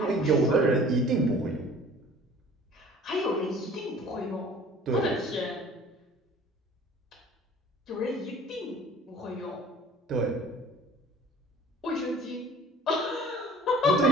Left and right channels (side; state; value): both; normal; correlation 0.48